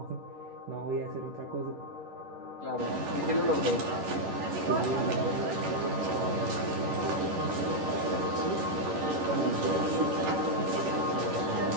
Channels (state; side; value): late; left; 11 ms